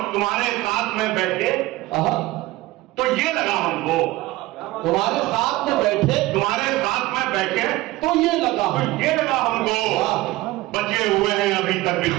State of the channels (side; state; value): left; quieter; 18.3 dB